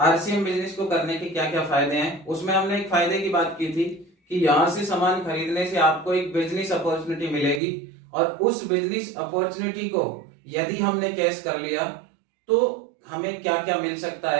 बिजनेस को करने के क्या क्या फायदे हैं, उसमें हमने एक फायदे की बात की थी कि यहाँ से सामान खरीदने से आपको एक बिजनेस अपॉर्चुनिटी मिलेगी और उस बिजनेस अपॉर्चुनिटी को यदि हमने कैश कर लिया तो हमें क्या क्या मिल सकता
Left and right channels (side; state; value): left; drops out; at 7.6 s